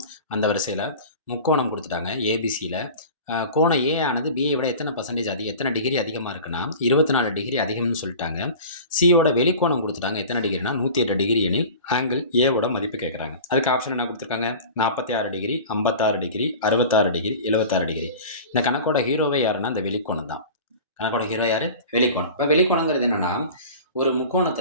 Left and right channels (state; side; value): inverted; both; correlation -0.37